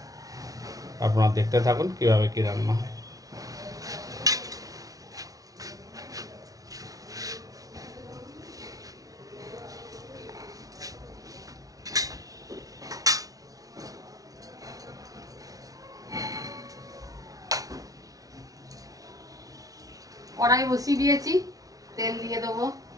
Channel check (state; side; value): late; left; 0.18 ms